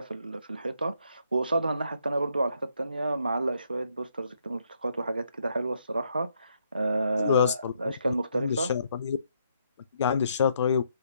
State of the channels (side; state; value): both; inverted; correlation -0.74